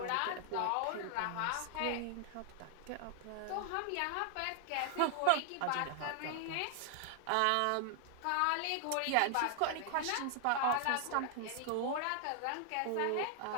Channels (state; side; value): different; both; correlation 0.00